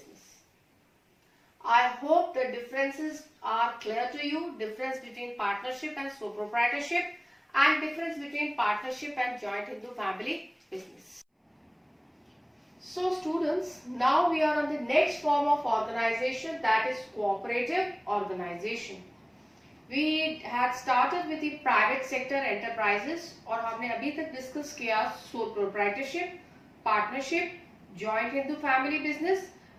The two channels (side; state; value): both; identical; correlation 1.00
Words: I hope the differences are clear to you. Difference between partnership and sole proprietorship, and difference between partnership and joint Hindu family business. So students, now we are on the next form of organization, that is cooperative organization. We had started with the private sector enterprises और हमने अभी तक discuss किया sole proprietorship, partnership, joint Hindu family business,